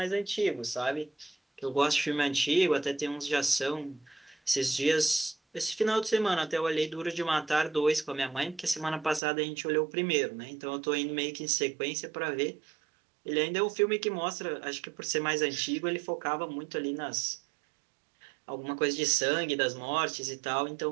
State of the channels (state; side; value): drops out; left; at 9.2 s